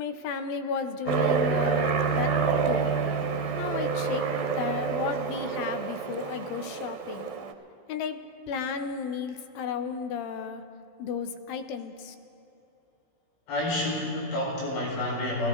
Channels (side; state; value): right; late; 15 ms